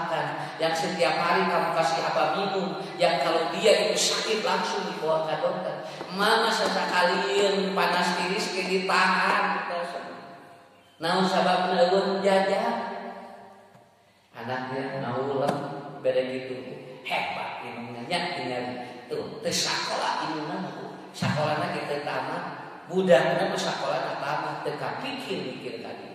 yang setiap hari kamu kasih apa minum, yang kalau dia itu sakit langsung dibawa ke dokter. Mama sesekalian panas tiris ke ditahan. Naon sababna eueun jajan. Anaknya naulah beda gitu. Hebat ilmunya tinggal tuh teu sakola ilmuna Sakolana kita tamat, budakna sakolana tamat, teka pikir tadi.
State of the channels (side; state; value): both; identical; correlation 1.00